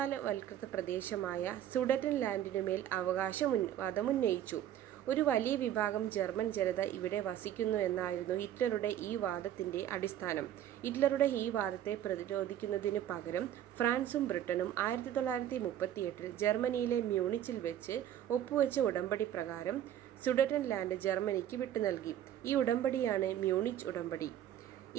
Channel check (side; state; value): left; quieter; 11.2 dB